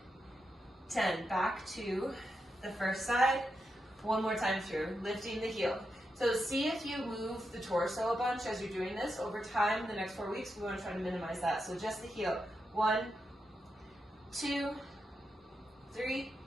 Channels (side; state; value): both; normal; correlation 0.86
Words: 10, back to the first side. One more time through, lifting the heel. So see if you move the torso a bunch as you're doing this. Over time, the next 4 weeks, we want to try to minimize that. So just the heel. 1, 2, 3,